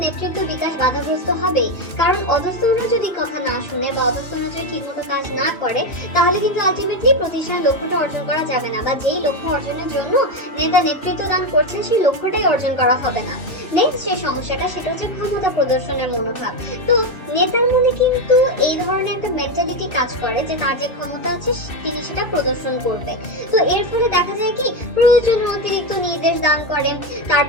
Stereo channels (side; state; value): right; late; 2.6 ms